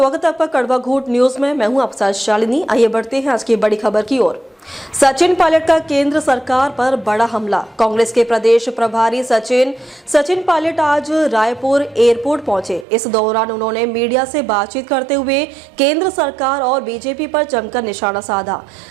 है आपका कड़वा घूट न्यूज में। मैं हूं आपके साथ शालिनी। आइए बढ़ते हैं आज की बड़ी खबर की ओर। सचिन पायलट का केंद्र सरकार पर बड़ा हमला। कांग्रेस के प्रदेश प्रभारी सचिन पायलट आज रायपुर एयरपोर्ट पहुंचे। इस दौरान उन्होंने मीडिया से बातचीत करते हुए केंद्र सरकार और बीजेपी पर जमकर निशाना साधा।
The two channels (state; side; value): drops out; left; at 12.9 s